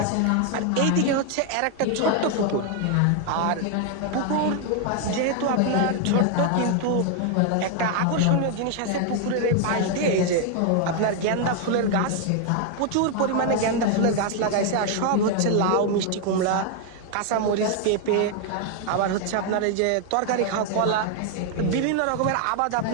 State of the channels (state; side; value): different; both; correlation 0.00